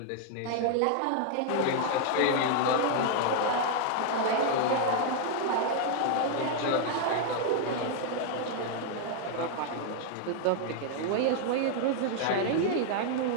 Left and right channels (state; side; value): different; both; correlation 0.00